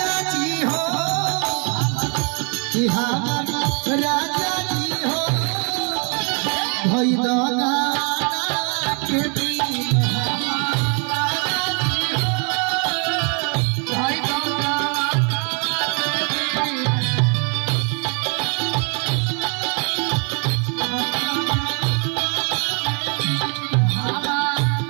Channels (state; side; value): quieter; left; 37.7 dB